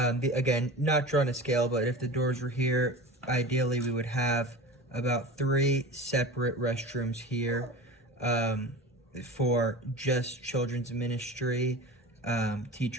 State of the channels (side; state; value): both; normal; correlation 0.33